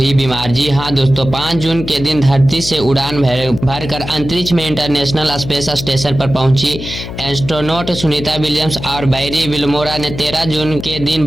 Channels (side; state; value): left; noise; hum, 9 dB below the sound